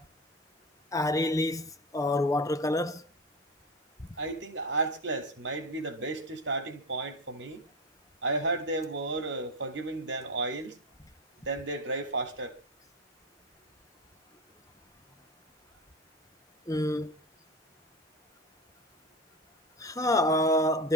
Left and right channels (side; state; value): both; normal; correlation 0.22